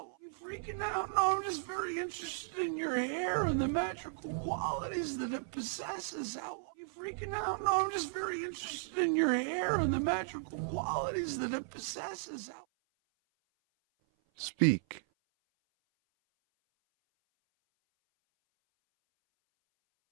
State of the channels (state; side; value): silent; left; 54 dB below the other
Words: Freaking out. No, I'm just very interested in your hair and the magical qualities that it possesses. Freaking out. No, I'm just very interested in your hair and the magical qualities that it possesses. Speak.